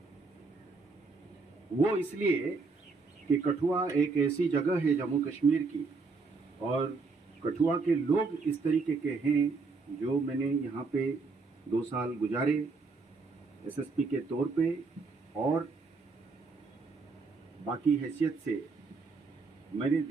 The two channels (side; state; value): left; quieter; 4.2 dB